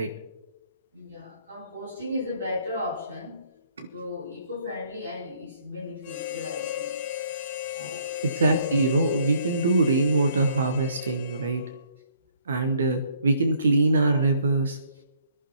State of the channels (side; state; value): both; inverted; correlation -0.63